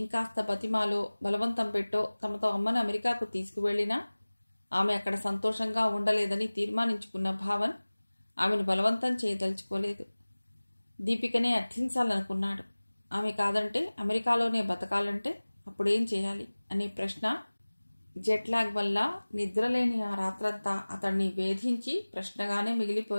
బతిమాలో బలవంతం పెట్టో తమతో అమ్మను అమెరికాకు తీసుకువెళ్లినా ఆమె అక్కడ సంతోషంగా ఉండలేదని తీర్మానించుకున్న భావన్ ఆమెను బలవంతం చేయదలుచుకోలేదు. దీపికనే అర్థించాలనుకున్నాడు. ఆమె కాదంటే అమెరికాలోనే బతకాలంటే అప్పుడేం చేయాలి అనే ప్రశ్న జెట్లాగ్ వల్ల నిద్రలేని ఆ రాత్రంతా అతన్ని వేధించి ప్రశ్నగానే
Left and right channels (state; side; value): inverted; both; correlation -1.00